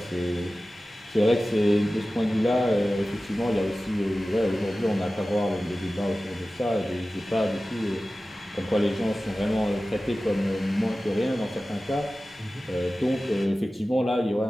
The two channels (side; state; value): both; normal; correlation 0.96